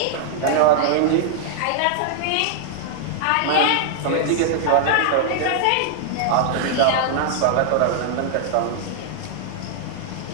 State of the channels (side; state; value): both; different; correlation -0.01